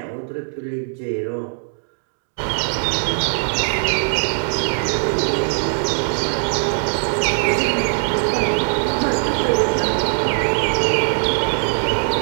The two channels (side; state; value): left; silent; digital silence